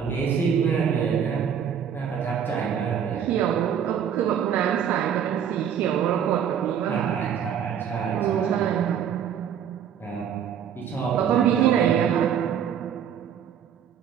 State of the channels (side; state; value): left; quieter; 8.4 dB